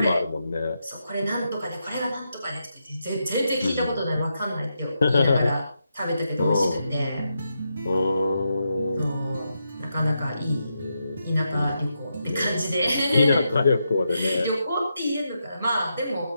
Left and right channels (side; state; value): both; inverted; correlation -0.84